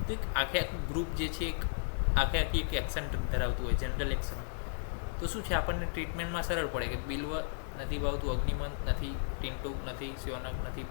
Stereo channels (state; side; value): silent; right; digital silence